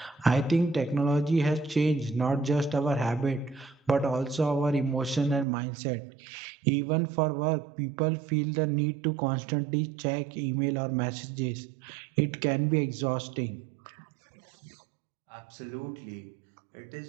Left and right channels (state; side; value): drops out; left; at 5.5 s